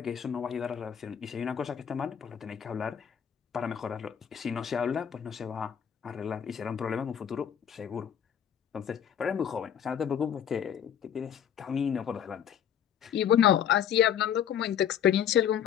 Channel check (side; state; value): right; quieter; 9.0 dB